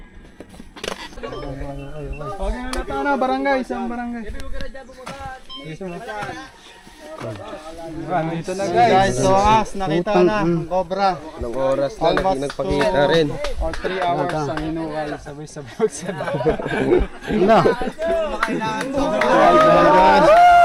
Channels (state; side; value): identical; both; correlation 1.00